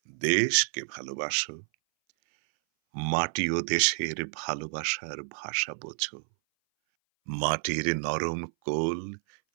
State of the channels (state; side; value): silent; left; 58 dB below the other